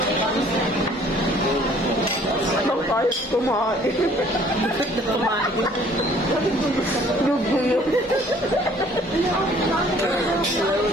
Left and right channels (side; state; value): both; normal; correlation 0.56